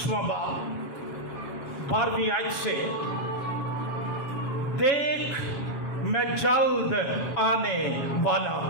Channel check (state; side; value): late; right; 7.4 ms